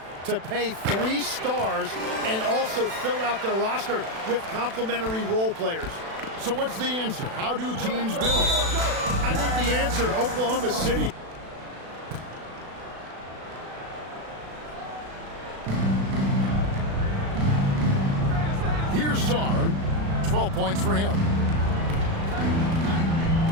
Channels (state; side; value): late; left; 36 ms